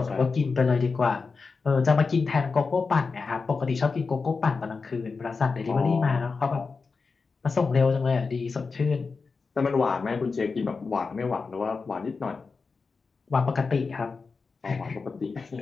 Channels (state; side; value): quieter; right; 4.6 dB